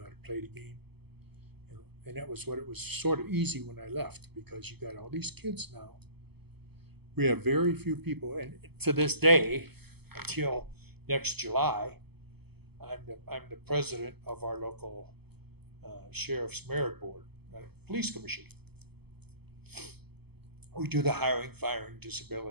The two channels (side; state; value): left; late; 0.97 ms